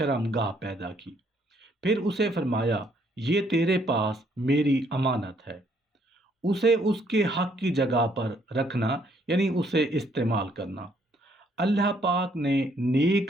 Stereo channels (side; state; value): both; normal; correlation 0.68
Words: پیدا کی، پھر اسے فرمایا یہ تیرے پاس میری امانت ہے، اسے اس کے حق کی جگہ پر رکھنا، یعنی اسے استعمال کرنا۔ اللہ پاک نے